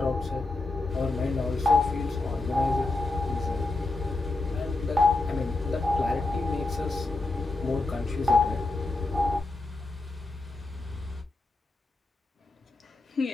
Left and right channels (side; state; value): right; quieter; 3.1 dB